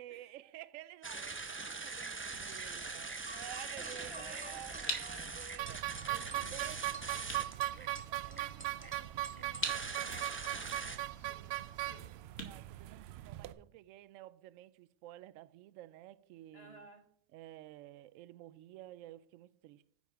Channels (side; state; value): left; quieter; 6.9 dB